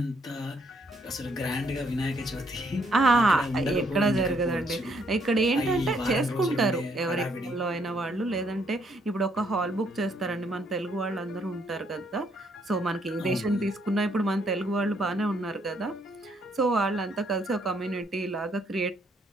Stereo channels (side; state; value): both; normal; correlation 0.70